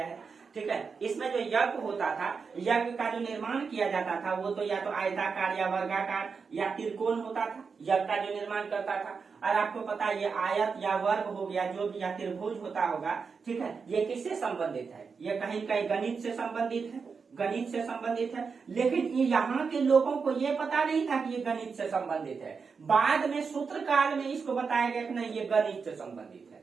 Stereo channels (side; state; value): left; quieter; 5.4 dB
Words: है। ठीक है। इसमें जो यज्ञ होता था, यज्ञ का जो निर्माण किया जाता था वो तो या तो आयताकार या वर्गाकार या त्रिकोण होता था, यज्ञ का जो निर्माण करता था। और आपको पता है ये आयत या वर्ग हो गया जो भी, या त्रिभुज होता होगा, ठीक है, ये किससे संबंधित है? ये कहीं कहीं गणित से संबंधित है, गणित से संबंधित है। लेकिन यहाँ के लोगों को ये पता नहीं था कि ये गणित से संबंधित है। बाद में सूत्र काल में इसको बताया गया कि नहीं ये गणित से संबंधित